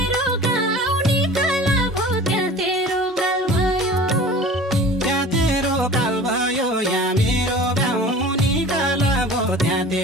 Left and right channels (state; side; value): normal; both; correlation 0.41